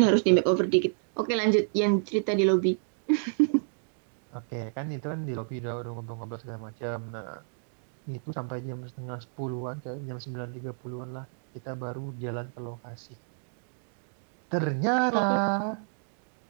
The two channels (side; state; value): left; silent; digital silence